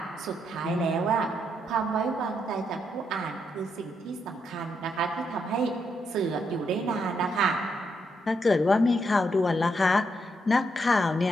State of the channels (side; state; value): both; normal; correlation 0.79